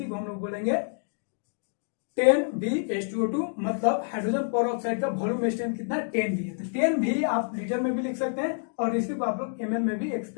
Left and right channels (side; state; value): right; silent; 59 dB below the other